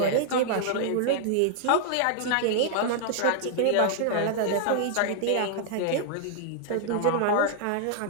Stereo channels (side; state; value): both; different; correlation -0.01